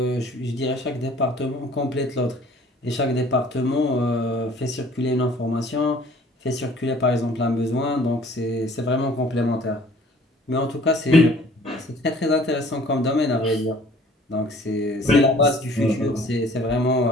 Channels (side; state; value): both; normal; correlation 0.53